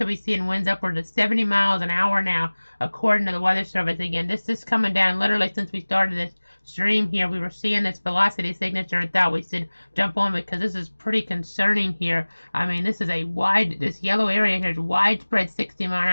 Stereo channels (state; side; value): inverted; both; correlation -1.00